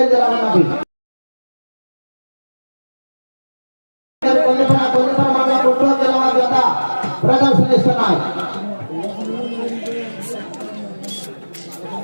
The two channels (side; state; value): both; inverted; correlation -1.00